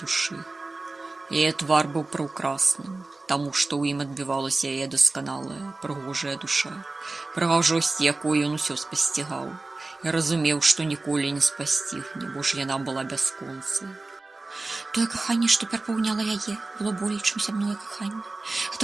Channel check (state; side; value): quieter; left; 3.3 dB